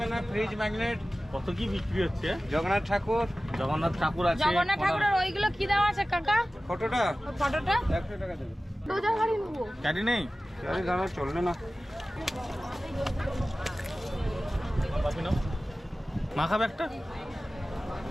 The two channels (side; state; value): both; normal; correlation 0.96